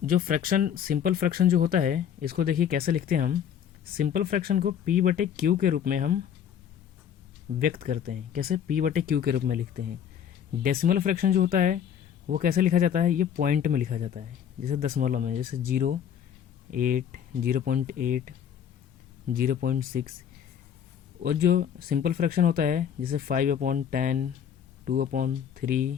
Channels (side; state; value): right; quieter; 8.9 dB